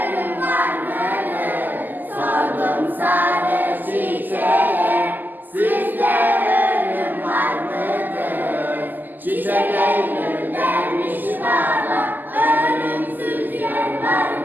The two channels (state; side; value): late; left; 0.087 ms